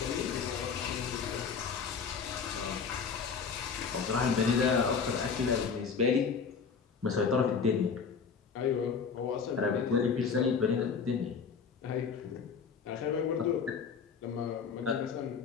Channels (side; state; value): right; quieter; 5.9 dB